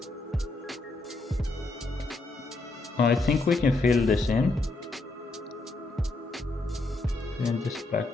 I think we can fill this in this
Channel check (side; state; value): right; quieter; 3.1 dB